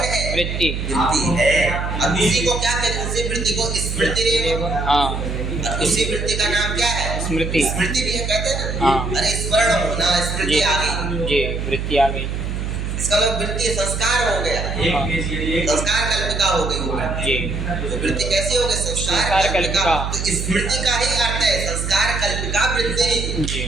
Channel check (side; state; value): right; noise; hum, 3 dB below the sound